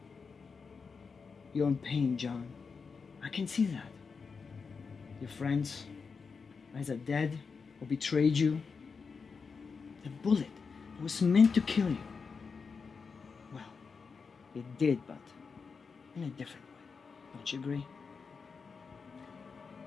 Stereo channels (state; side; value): quieter; right; 5.2 dB